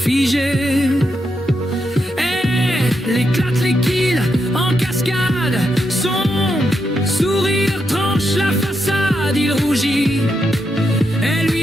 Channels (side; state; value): both; normal; correlation 0.83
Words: Et l'éclate les kills en cascade, son sourire tranche la façade, il rougit. Elle